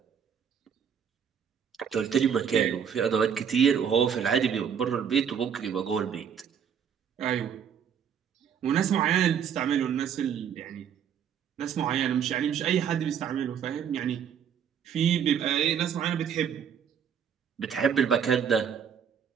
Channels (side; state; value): left; quieter; 7.9 dB